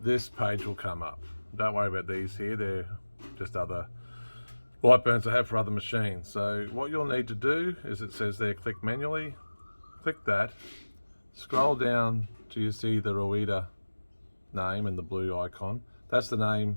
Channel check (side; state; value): both; inverted; correlation -1.00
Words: page will come up. Don't worry about these here, they're just other lightburns I have for other machines. So what you'll need to do is, it says there, click manually, click that, scroll down till you see the Rueda name and the blue icon. That's the